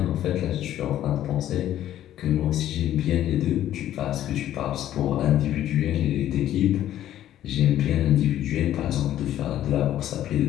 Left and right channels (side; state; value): right; quieter; 12.3 dB